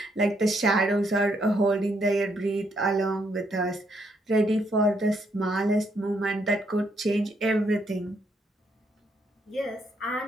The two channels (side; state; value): both; normal; correlation 0.74